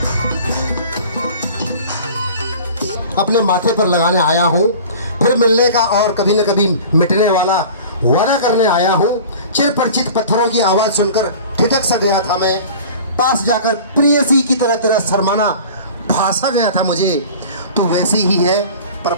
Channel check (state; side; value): inverted; both; correlation -0.41